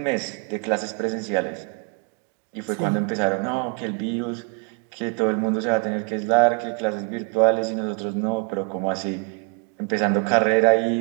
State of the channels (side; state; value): left; quieter; 34.4 dB